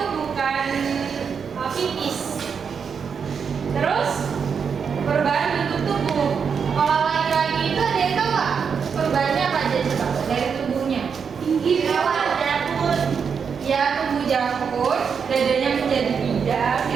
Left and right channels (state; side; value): quieter; left; 6.4 dB